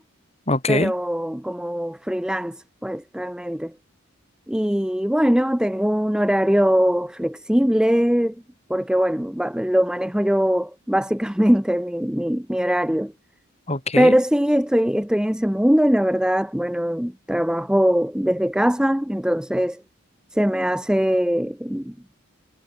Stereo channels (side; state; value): both; normal; correlation 0.97